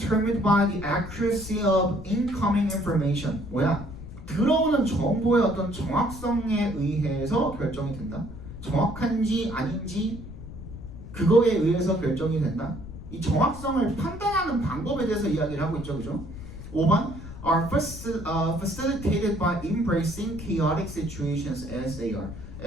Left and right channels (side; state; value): left; noise; rumble, 12 dB below the sound